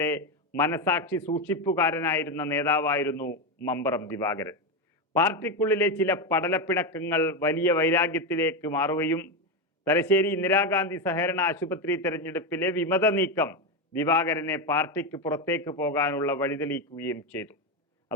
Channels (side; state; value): both; normal; correlation 0.11